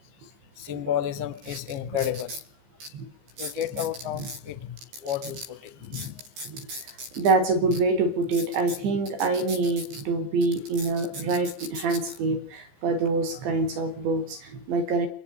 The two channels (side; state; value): left; late; 15 ms